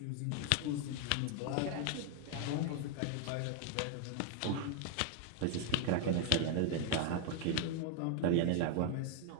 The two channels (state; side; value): different; both; correlation 0.00